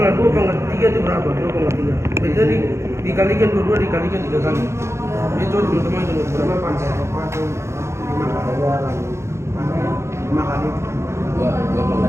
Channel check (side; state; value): left; late; 0.13 ms